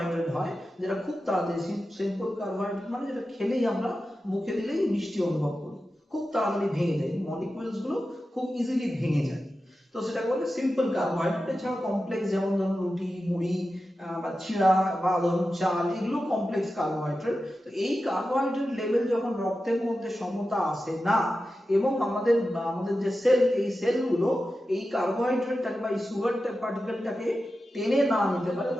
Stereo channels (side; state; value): both; normal; correlation 0.92